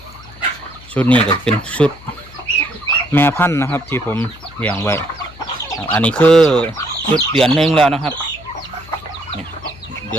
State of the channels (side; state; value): left; noise; hum, 21 dB below the sound